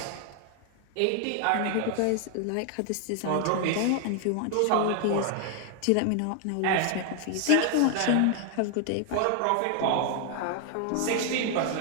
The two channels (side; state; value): both; different; correlation 0.00